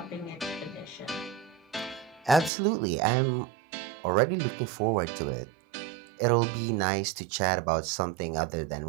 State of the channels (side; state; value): left; drops out; at 2.5 s